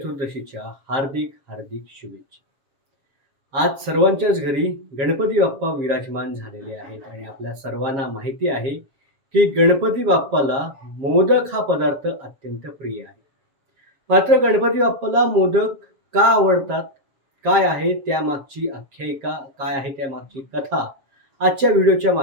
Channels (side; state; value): left; late; 7.3 ms